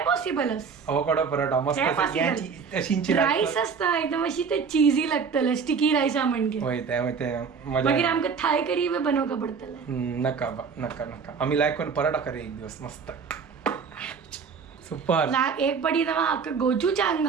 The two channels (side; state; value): left; quieter; 5.9 dB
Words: पॉसिबलच. आवोकाडो पराठा मस्त ते असं possible. याची तशींची रायस असता एकदम अशी ते चीजी लागतले स्टिकी रायसा म्हणजे. होय ते मजा मागीर आमकां थाय करी बी बनवका पडटलें. नका आम्ही लायक करून पराठा करूया एक दिवस मस्त सुपर. एक पडी ना म्हाका गोचूचांग